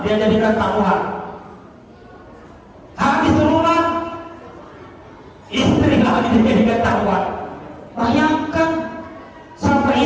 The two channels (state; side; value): identical; both; correlation 1.00